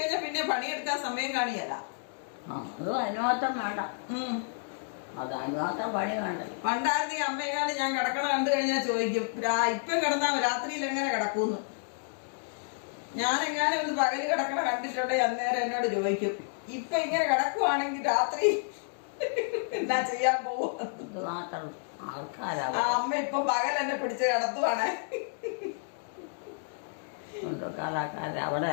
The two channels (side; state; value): right; silent; digital silence